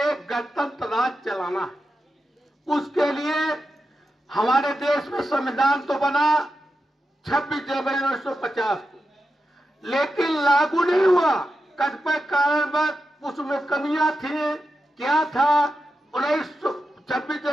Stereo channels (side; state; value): both; normal; correlation 0.89